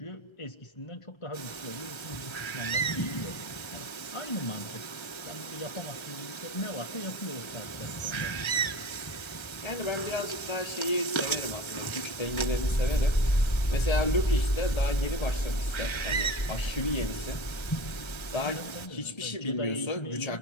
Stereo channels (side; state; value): right; late; 1.3 ms